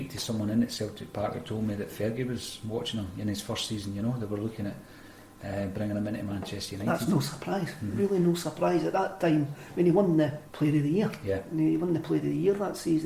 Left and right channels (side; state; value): both; identical; correlation 1.00